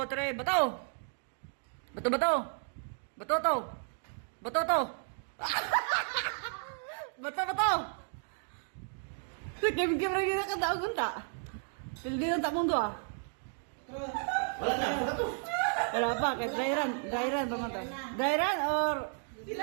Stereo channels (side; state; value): left; silent; 56 dB below the other